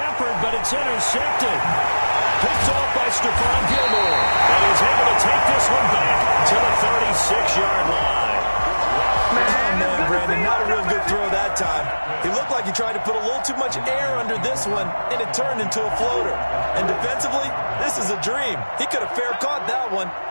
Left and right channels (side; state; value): both; inverted; correlation -1.00